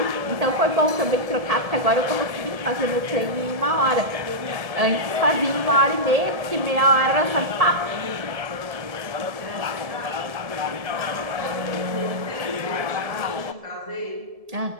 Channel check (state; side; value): late; left; 1.7 ms